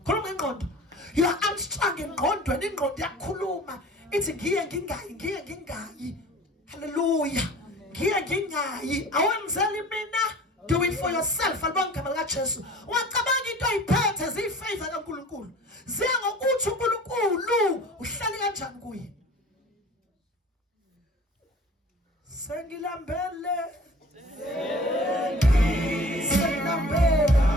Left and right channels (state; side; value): normal; both; correlation 0.44